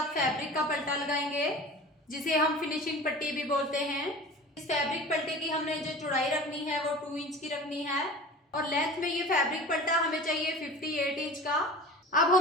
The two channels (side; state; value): both; normal; correlation 0.38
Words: फैब्रिक का पल्टा लगाएंगे, जिसे हम फिनिशिंग पट्टी भी बोलते हैं। इस फैब्रिक पल्टे की हमने जो चौड़ाई रखनी है वो 2 इंच की रखनी है और लेंथ में ये फैब्रिक पल्टा हमें चाहिए 58 इंच का। अब